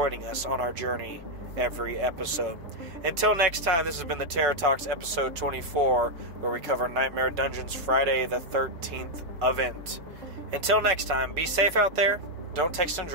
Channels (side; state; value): left; late; 5.3 ms